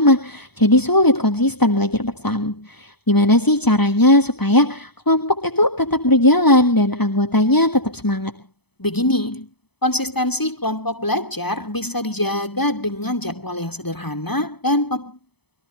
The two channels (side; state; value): right; late; 0.98 ms